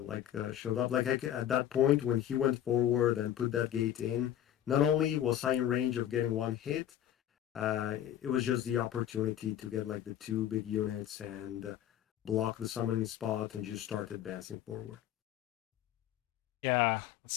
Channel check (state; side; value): quieter; right; 11.3 dB